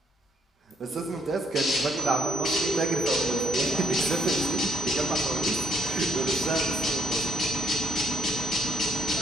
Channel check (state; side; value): normal; both; correlation 0.65